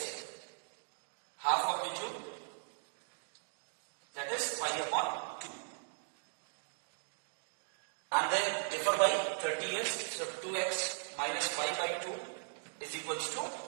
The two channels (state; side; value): silent; left; digital silence